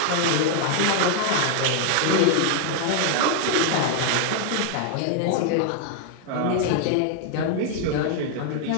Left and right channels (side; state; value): both; different; correlation 0.00